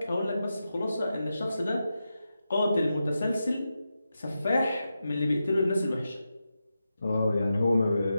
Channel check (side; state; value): both; inverted; correlation -0.89